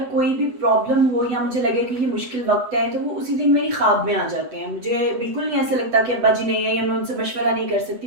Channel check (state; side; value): late; left; 8.0 ms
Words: कोई भी प्रॉब्लम हो या मुझे लगे कि ये मुश्किल वक्त है, तो वो उसी दिन मेरी ख्वाब में आ जाते हैं। मुझे बिल्कुल नहीं ऐसा लगता कि अब्बा जी नहीं है या मैं उनसे मशवरा नहीं कर सकती।